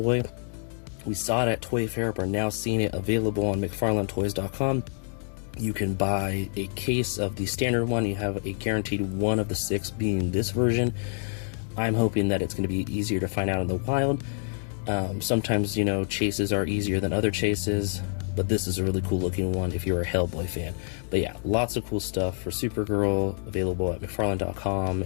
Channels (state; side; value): silent; right; 60 dB below the other